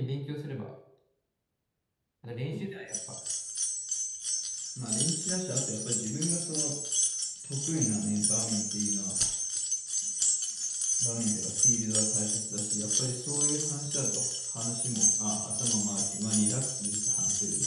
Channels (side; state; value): both; identical; correlation 1.00